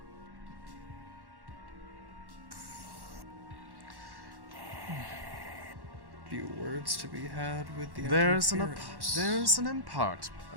few words to be had with the There's an interference.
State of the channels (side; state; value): left; late; 1.1 ms